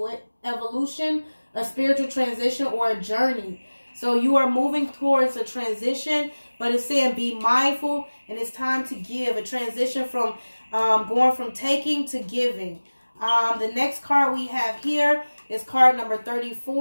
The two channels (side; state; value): both; inverted; correlation -1.00